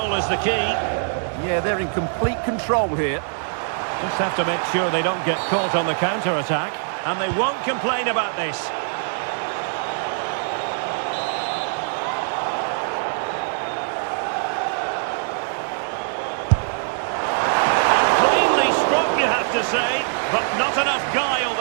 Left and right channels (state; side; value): silent; left; digital silence